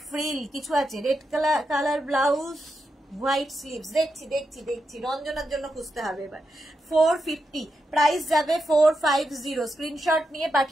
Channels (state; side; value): normal; both; correlation 0.86